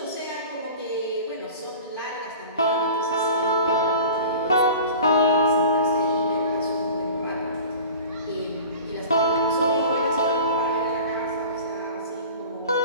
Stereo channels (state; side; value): inverted; both; correlation -0.39